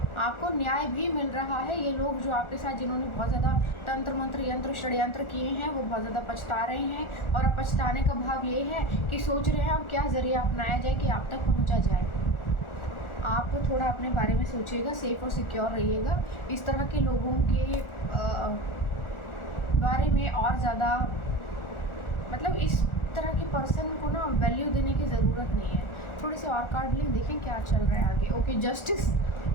आपको न्याय भी मिल रहा है। ये लोग जो आपके साथ जिन्होंने बहुत ज़्यादा तंत्र मंत्र यंत्र षड्यंत्र किए हैं वो बहुत ज़्यादा पछता रहे हैं और अब पछताने का भाव ये है कि सोच रहे हैं अब क्या ज़रिया अपनाया जाए कि आप तक पहुंचा जाए। आप थोड़ा अपने बारे में सोचिएगा, सेफ और सिक्योर रहिएगा। इस तरह के लोगों के बारे में और ज़्यादा मतलब इस तरह के पर्सन को ना वैल्यू देने की ज़रूरत नहीं है। थोड़े से और कार्ड लें, देखें क्या चल रहा है आगे। Okay, justice.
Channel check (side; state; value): right; late; 1.4 ms